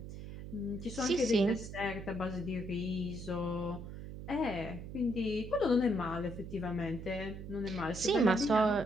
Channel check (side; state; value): right; noise; hum, 10 dB below the sound